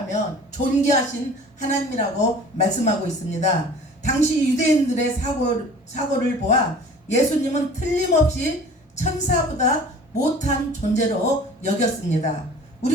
존귀하신 하나님이라고 말씀하고 있습니다. 당시 유대인들의 사고를 보아 예수님은 틀림없이 천사보다 못한 존재로 여겼습니다.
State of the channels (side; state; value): both; normal; correlation 0.45